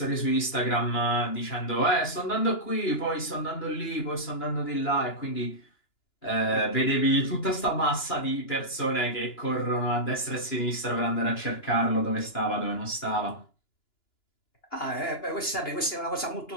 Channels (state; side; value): late; right; 2.9 ms